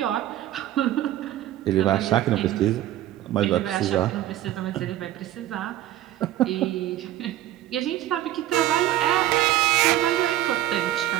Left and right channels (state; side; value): quieter; left; 13.6 dB